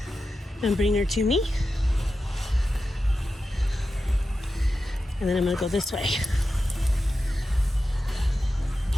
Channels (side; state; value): both; normal; correlation 0.91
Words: and bring her to me. And then I'm gonna go this way.